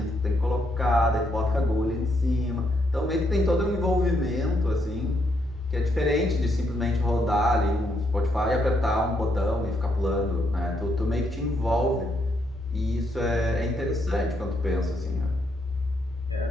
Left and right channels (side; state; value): right; noise; rumble, 29 dB below the sound